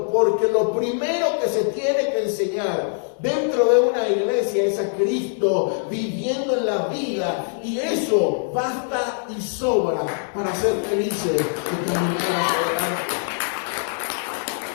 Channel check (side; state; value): right; silent; 64 dB below the other